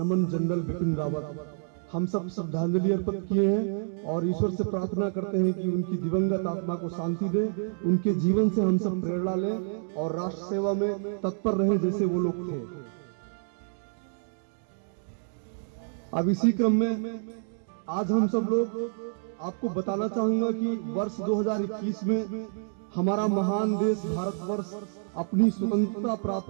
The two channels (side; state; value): left; silent; digital silence